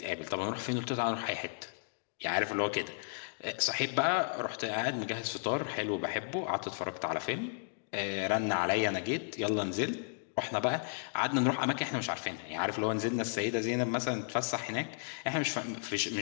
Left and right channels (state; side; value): silent; right; digital silence